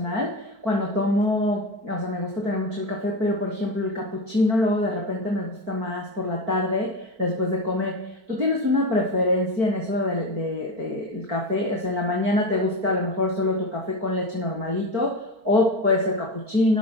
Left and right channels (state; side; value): late; left; 4.5 ms